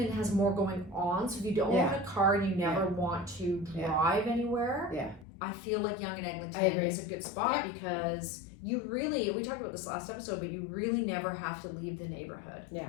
has more going on, so if you don't own a car and you never want to drive anywhere, I feel like Yonge and Eglington is a good spot because you really, we talked about this last episode, but you really never have to leave the neighborhood. Yeah,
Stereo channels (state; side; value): drops out; right; at 5.2 s